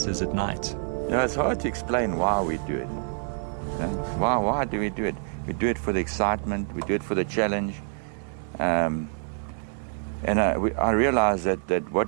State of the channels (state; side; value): silent; left; digital silence